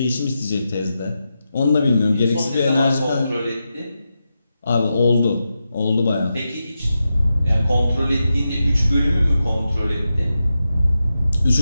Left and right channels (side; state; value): both; inverted; correlation -0.89